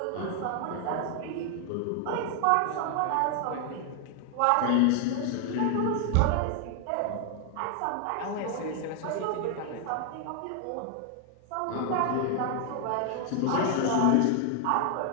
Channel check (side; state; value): both; different; correlation 0.00